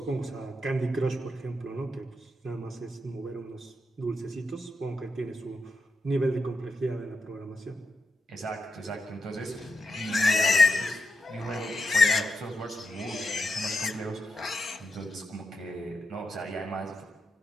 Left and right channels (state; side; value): normal; both; correlation 0.85